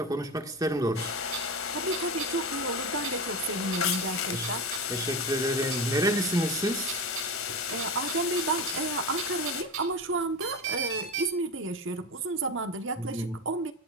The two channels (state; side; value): normal; both; correlation 0.22